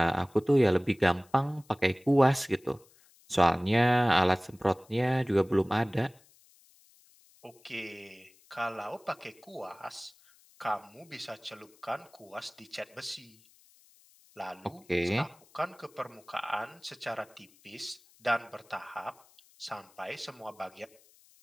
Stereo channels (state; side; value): noise; left; hiss, 29 dB below the sound